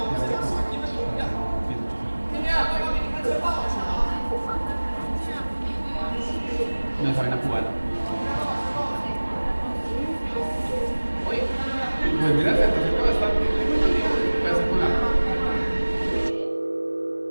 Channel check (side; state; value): both; inverted; correlation -1.00